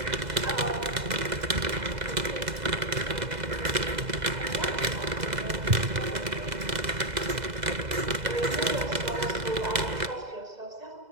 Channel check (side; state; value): left; late; 2.0 ms